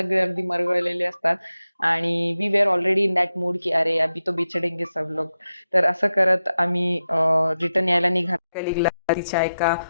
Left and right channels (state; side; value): inverted; both; correlation -0.91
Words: अगदी मरगळलेले असतात. आणि we were already in that mood की अरे अभी तो बिछडेंगे सब लोग. तर असं करत आम्ही रिटर्न यायला निघालो. कलिगला तिच्या एका